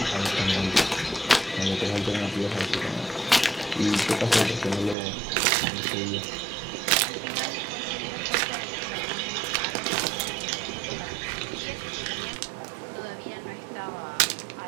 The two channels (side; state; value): left; drops out; at 5.0 s